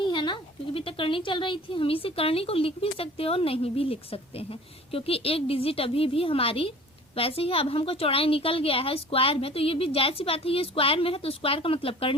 है ना, क्योंकि अभी तक करनी चल रही थी। हम इसी करनी को लिख भी सकते हैं और नहीं भी लिख सकते हैं, क्योंकि एक डिजिट अभी भी हमारी वैसे ही। अब हमको चौड़ाई निकल गया है स्क्वायर में, तो ये भी जायज सी बात है, ये स्क्वायर में है तो स्क्वायर का मतलब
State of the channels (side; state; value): both; normal; correlation 0.45